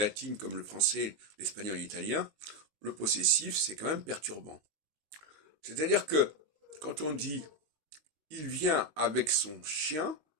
comme le français, l'espagnol et l'italien, le possessif, c'est quand même perturbant. C'est-à-dire que quand on dit il vient avec son chien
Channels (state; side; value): late; left; 19 ms